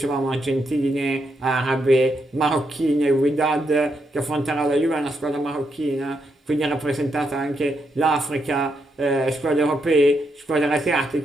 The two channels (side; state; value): both; normal; correlation 0.80